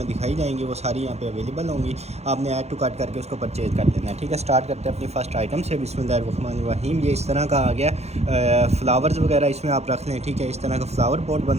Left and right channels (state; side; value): late; left; 0.31 ms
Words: दिखाई जाएंगी वो सारी यहाँ पे अवेलेबल होंगी। आपने ऐड टू कार्ट करके उसको परचेज़ कर लेना है। ठीक है, स्टार्ट करते हैं अपनी फ़र्स्ट आइटम से। बिस्मिल्लाहिर्रहमानिर्रहीम। ये इस तरह का आ गया, फ्लावर्स वगैरह इसमें आप रख लें। ठीक है, इस तरह का फ्लावर पॉट